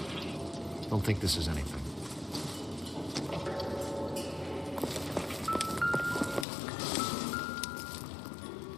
Don't think this is anything.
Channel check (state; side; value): drops out; right; at 6.5 s